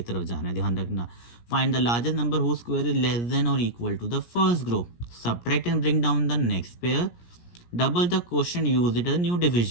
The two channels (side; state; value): right; late; 17 ms